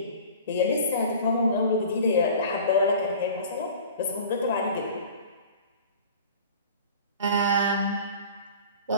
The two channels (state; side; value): inverted; both; correlation -0.42